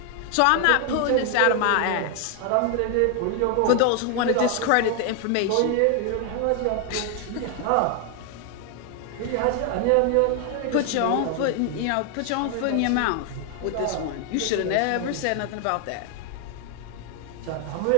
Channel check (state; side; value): different; both; correlation 0.00